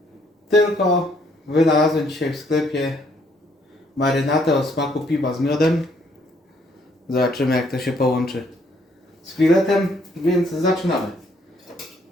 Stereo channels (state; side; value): normal; both; correlation 0.67